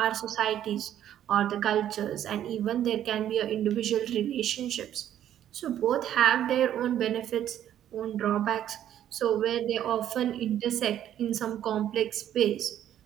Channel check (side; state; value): left; quieter; 11.0 dB